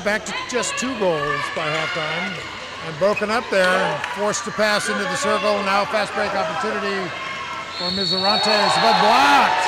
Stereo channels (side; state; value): both; identical; correlation 1.00